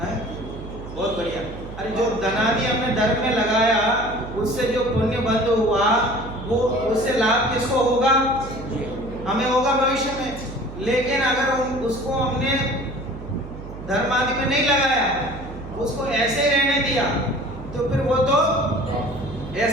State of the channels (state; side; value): noise; right; hum, 12 dB below the sound